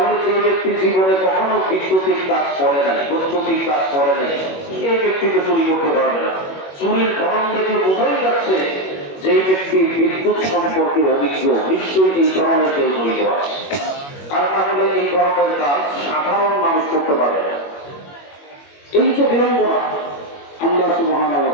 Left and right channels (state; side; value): late; right; 21 ms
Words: যে ব্যক্তি জীবনে কখনো বিদ্যুতিক কাজ করে নাই, বৈদ্যুতিক কাজ করে নাই, এই ব্যক্তিকে চুরি করতে পারবে না। চুরির ধরন দেখে বোঝাই যাচ্ছে যে ব্যক্তি বিদ্যুৎ সম্পর্কে অভিজ্ঞ, নিশ্চয়ই এই ধরনের কেউ জড়িত আছে। আর তাহলে এই ধরনের কাজ সাধারণ মানুষ করতে পারবে না। এই যে বিড়ম্বনা, আল্লাহ সুবহানাহু ওয়া